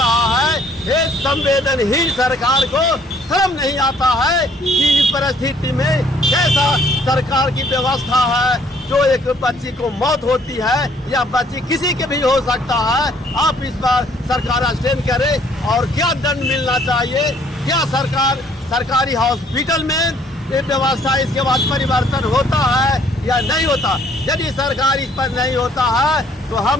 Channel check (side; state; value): both; normal; correlation 0.61